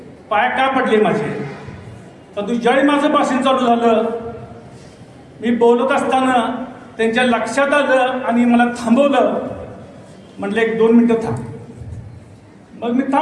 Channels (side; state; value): both; identical; correlation 1.00